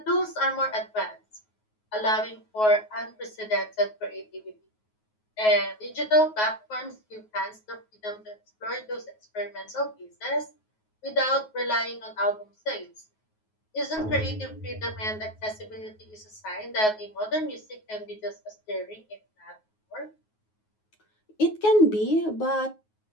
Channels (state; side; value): late; right; 9.4 ms